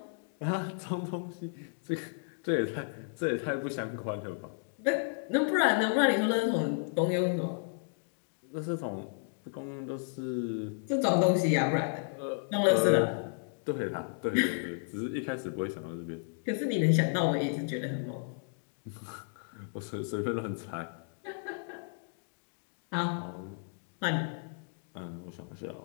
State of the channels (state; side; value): silent; right; digital silence